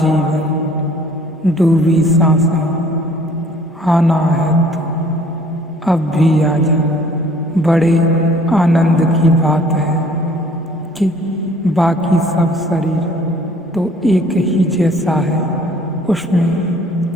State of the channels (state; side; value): normal; both; correlation 0.56